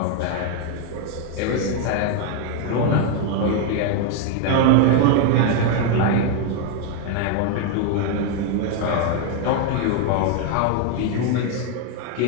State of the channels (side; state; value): both; different; correlation 0.01